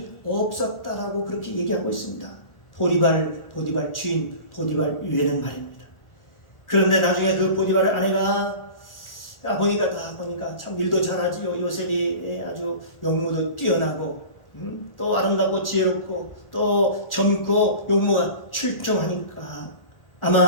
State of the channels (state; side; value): late; right; 1.4 ms